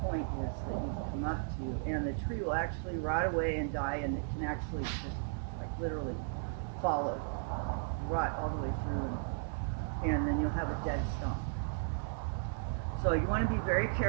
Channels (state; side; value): silent; left; 54 dB below the other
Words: point is that you've come up to, and the tree will actually rot away and die, and it can actually just like literally follow, rot all the way through, and then you'll have a dead stump. So you want to be very